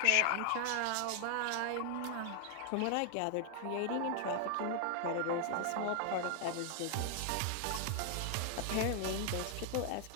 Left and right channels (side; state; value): both; different; correlation 0.00